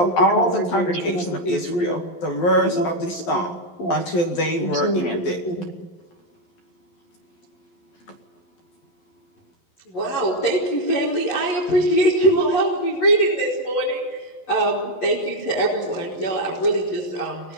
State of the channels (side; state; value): right; late; 12 ms